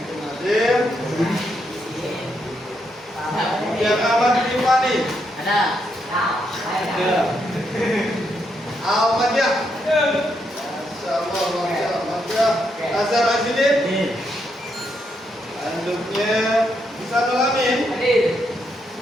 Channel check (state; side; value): normal; both; correlation 0.79